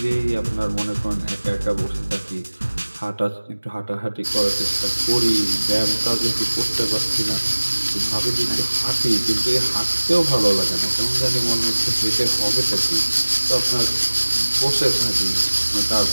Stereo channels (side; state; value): both; inverted; correlation -1.00